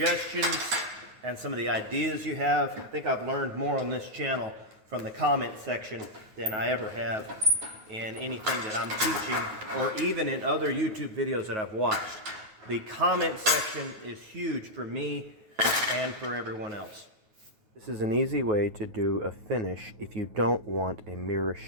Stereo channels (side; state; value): left; late; 9.4 ms